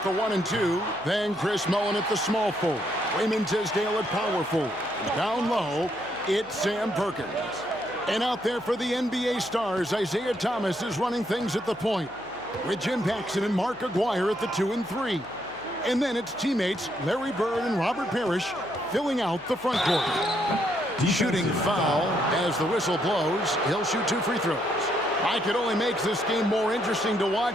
the 1 and 2. Then Chris Mullin at the small forward. Raymond Tisdale at power forward. Down low, it's Sam Perkins. And out there for the NBA stars, Isaiah Thomas is running things at the point, with Jim Paxson and Mark Aguirre at the 2 and 3. And then it's teammates Larry Bird and Robert Parrish filling out the front court. Shooting foul as the whistle blows. He'll shoot 2 free throws. I could only make this game more interesting to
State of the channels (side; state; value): left; noise; hum, 27 dB below the sound